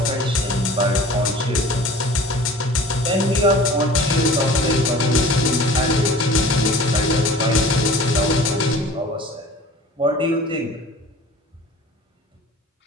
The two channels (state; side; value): normal; both; correlation 0.44